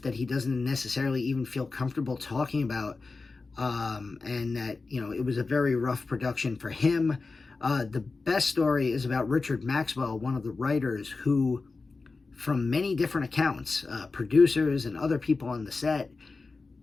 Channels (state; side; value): quieter; right; 3.9 dB